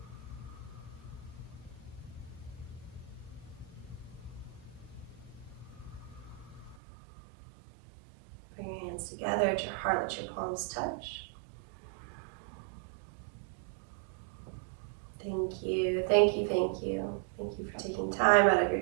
Bring your hands together at your heart, let your palms touch. Thank you, thank you, thank you. Thank you for taking time out of your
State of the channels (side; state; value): left; drops out; at 6.8 s